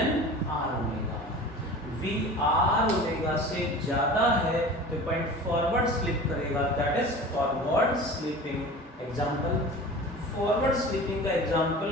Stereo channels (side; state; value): both; normal; correlation 0.37